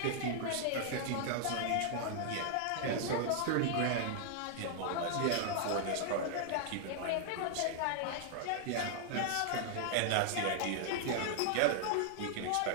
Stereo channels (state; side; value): different; both; correlation -0.01